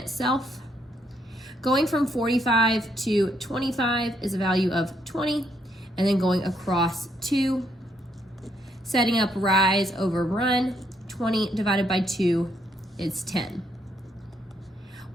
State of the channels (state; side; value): normal; both; correlation 0.74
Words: Going from 45 to 25 is a value of 20, and then going across 2. Setting up rise over run, 20 divided by 2 is 10.